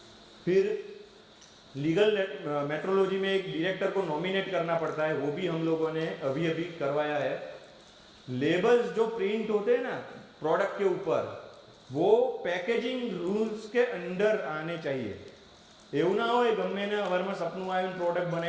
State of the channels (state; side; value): identical; both; correlation 1.00